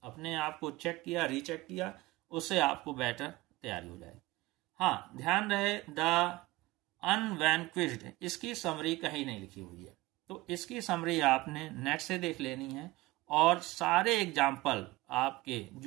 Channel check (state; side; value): quieter; left; 19.9 dB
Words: अपने आप को चेक किया, रीचेक किया, उससे आपको बेटर तैयारी हो जाए। हाँ, ध्यान रहे द अनवैनक्विज्ड, इसकी समरी कहीं नहीं लिखी हुई है, तो इसकी समरी आपने नेट से देख लेनी है, और सारे एग्जाम्पल आपके